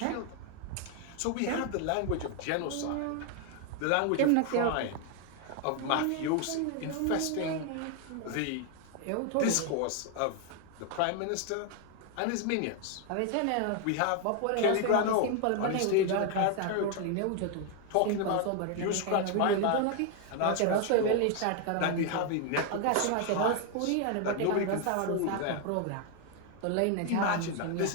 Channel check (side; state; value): both; different; correlation 0.00